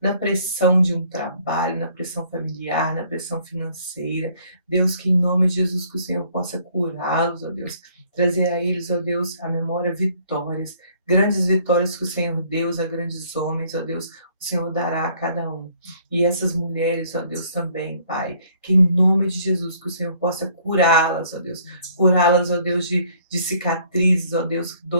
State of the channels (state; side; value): inverted; both; correlation -0.61